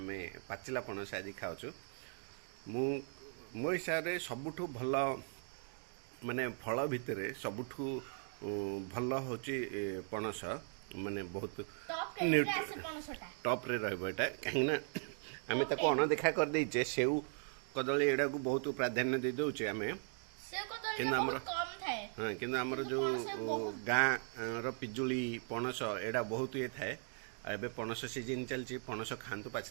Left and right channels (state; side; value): silent; left; 52 dB below the other